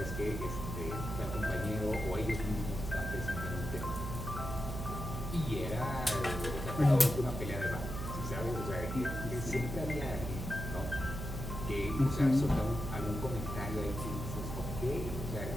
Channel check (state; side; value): noise; right; hum, 5 dB below the sound